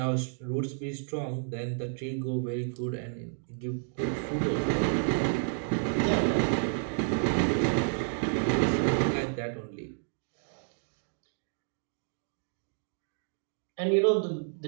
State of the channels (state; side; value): silent; left; digital silence